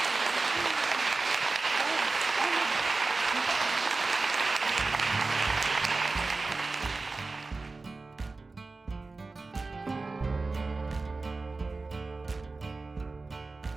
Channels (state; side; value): quieter; left; 3.7 dB